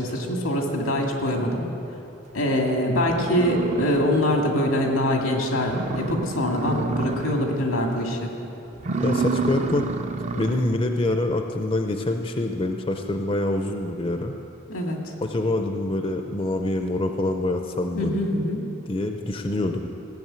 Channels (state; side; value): normal; both; correlation 0.48